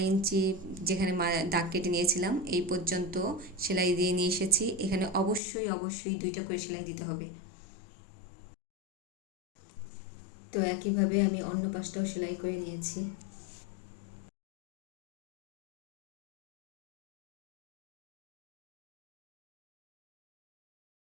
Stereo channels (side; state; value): right; drops out; at 5.4 s